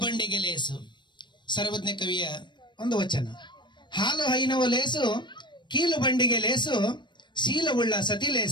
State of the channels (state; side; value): late; right; 0.22 ms